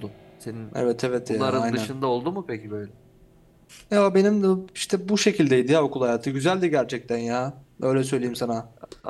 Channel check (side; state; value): both; identical; correlation 1.00